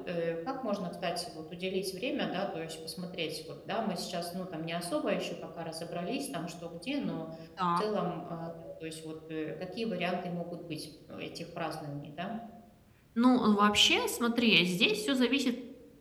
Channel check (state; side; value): identical; both; correlation 1.00